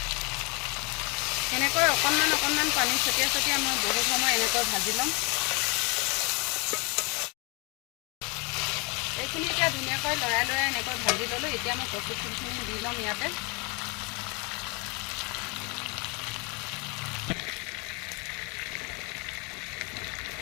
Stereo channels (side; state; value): right; quieter; 30.9 dB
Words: এনেকৈ অকণমান পানী ছটিয়াই মই বহুত সময় এনেকৈ ভাজি ল'ম এইখিনি এতিয়া ধুনীয়াকৈ লৰাই এনেকৈ ভাজি ল'লোঁ এতিয়া মই কচু ফুলখিনি দি ল'ম ইয়াতে